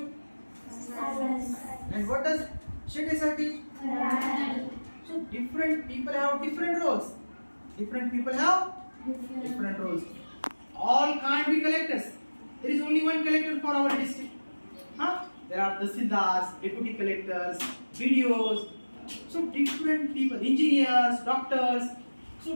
And what does Shinde sir teach? So different people have different roles. Different people have different roles. All can't be collectors. There is only one collector for our district. Huh? There are tahsildars, deputy collectors, BDOs. So different people, engineers, doctors. So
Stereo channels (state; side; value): inverted; both; correlation -1.00